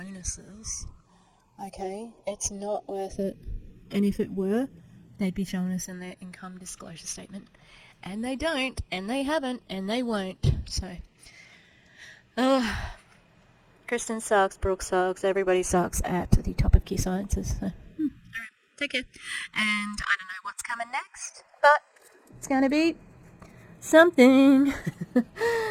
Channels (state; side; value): identical; both; correlation 1.00